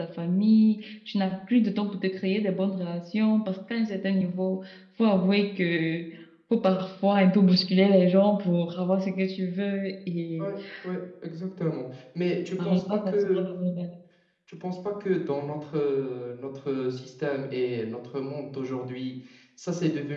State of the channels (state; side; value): identical; both; correlation 1.00